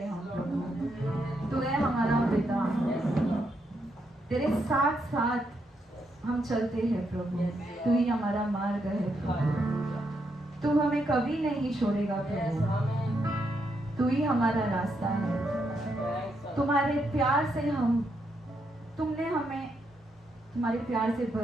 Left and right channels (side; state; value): both; normal; correlation 0.79